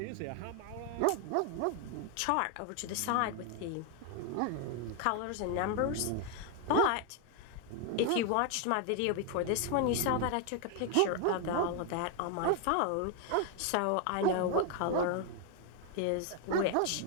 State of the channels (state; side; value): different; both; correlation 0.00